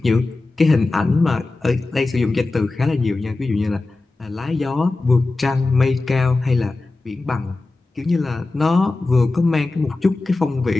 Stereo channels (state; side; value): quieter; right; 3.3 dB